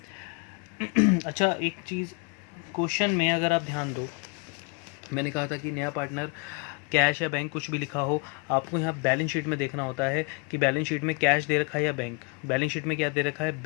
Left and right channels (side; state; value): right; quieter; 31.9 dB